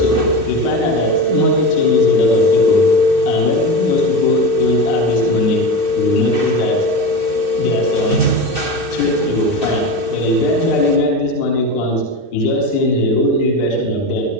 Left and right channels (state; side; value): late; right; 2.6 ms